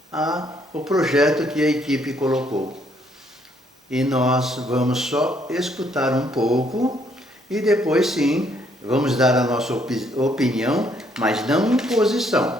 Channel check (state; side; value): normal; both; correlation 0.68